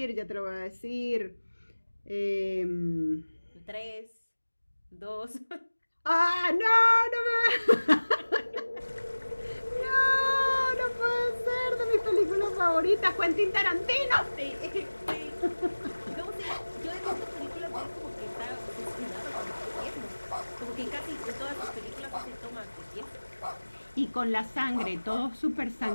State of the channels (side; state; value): both; inverted; correlation -1.00